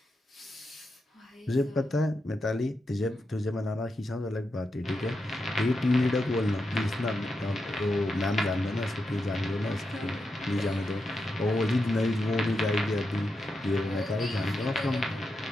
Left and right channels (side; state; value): both; normal; correlation 0.86